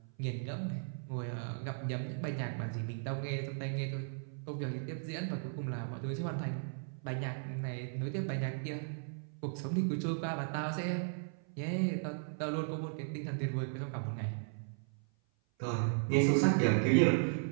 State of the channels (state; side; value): silent; left; 54 dB below the other